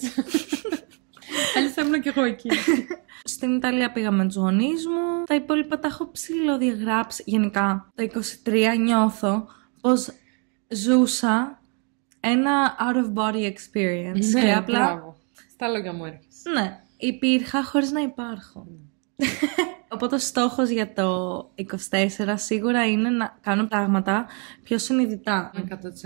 θα ήμουν και εγώ εκεί. Στην Ιταλία πήγαμε με τους γονείς μου. Τα υπόλοιπα τα έχω ψηλοδιαγράψει. Γενικά, το 23 νιώθω πως ζούσα ένα out of body experience. Ναι, και απλά... Μπράβο. Στα λόγια μου έρχεσαι. Ναι, υπήρχα χωρίς να υπάρχω. Οπότε ο στόχος για το 24 σίγουρα είναι να κάνω πράγματα πιο συνειδητά. 100%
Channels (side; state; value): left; quieter; 37.8 dB